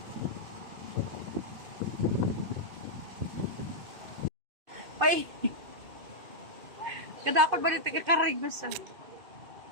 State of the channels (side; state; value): left; late; 2.5 ms